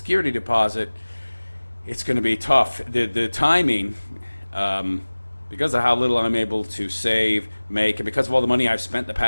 deposit, it's going to be tough. The timing, because of how little I'm able to save, make, and because of all the money I've spent the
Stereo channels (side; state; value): both; inverted; correlation -1.00